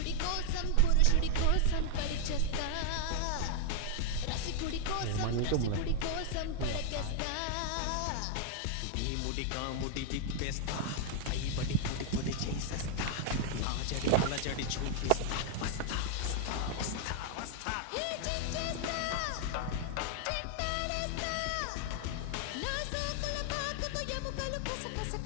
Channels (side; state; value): both; different; correlation 0.00